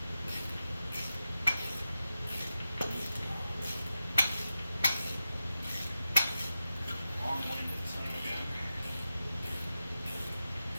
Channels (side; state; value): both; inverted; correlation -0.91